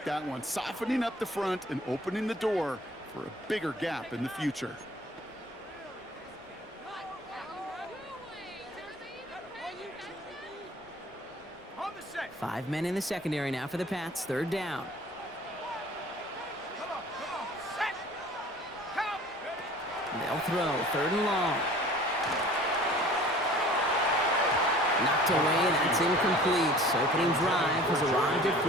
that one, softening up the front and opening the door for a bigger gap in the future. Five men in the secondary now for the Pats. 3rd down. They'll throw. 3rd and long. Knocked away. That's incomplete. Opening drive has arrived at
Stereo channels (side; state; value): both; normal; correlation 0.47